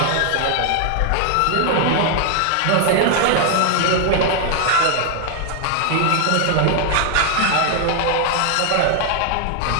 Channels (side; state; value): both; different; correlation 0.00